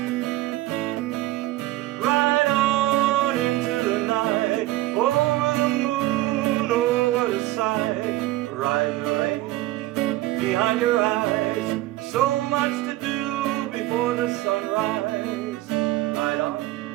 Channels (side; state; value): left; quieter; 16.9 dB